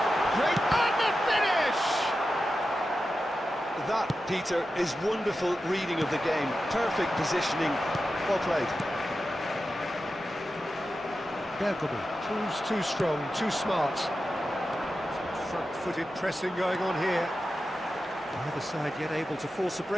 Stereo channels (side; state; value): left; noise; hum, 30 dB below the sound